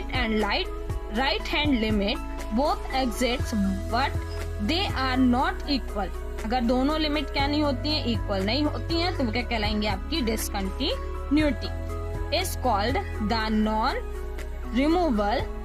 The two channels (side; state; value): both; identical; correlation 1.00